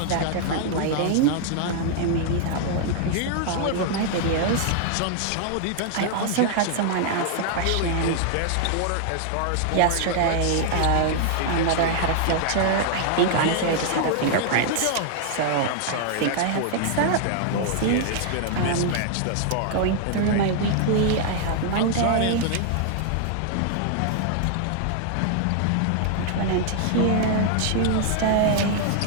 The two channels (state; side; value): different; both; correlation 0.00